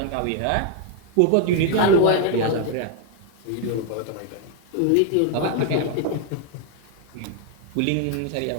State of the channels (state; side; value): different; both; correlation 0.00